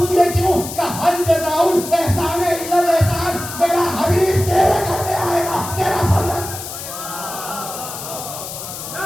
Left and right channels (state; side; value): noise; left; hiss, 9 dB below the sound